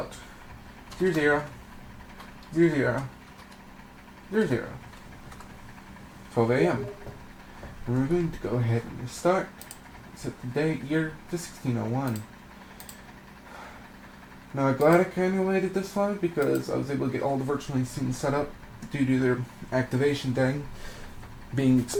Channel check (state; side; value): identical; both; correlation 1.00